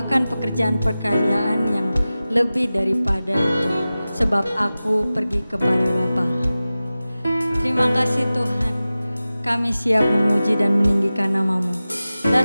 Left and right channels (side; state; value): both; inverted; correlation -0.96